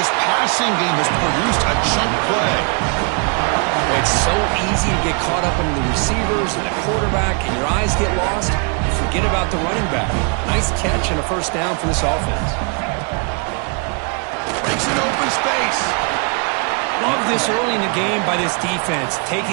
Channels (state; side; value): quieter; left; 37.2 dB